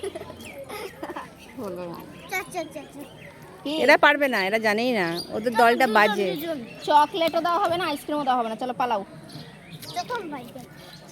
হলো না। এরা পারবে না, এরা জানেই না, ওদের দলটা বাজে। চকলেটও দেওয়া হবে না, আইসক্রিমও দেওয়া হবে না, চলো পালাও।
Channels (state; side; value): identical; both; correlation 1.00